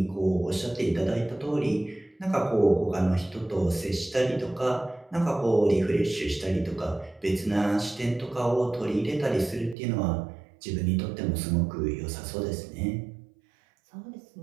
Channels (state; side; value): drops out; left; at 9.8 s